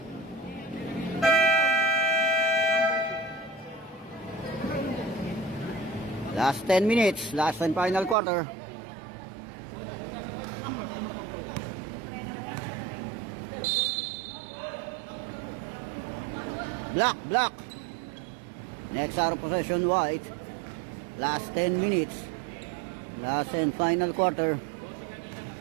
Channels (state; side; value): drops out; left; at 8.2 s